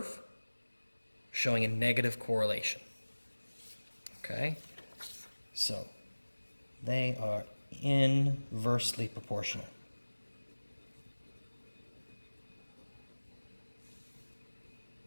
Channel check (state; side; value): inverted; both; correlation -1.00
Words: showing a negative correlation. Okay, so they are inversely proportional.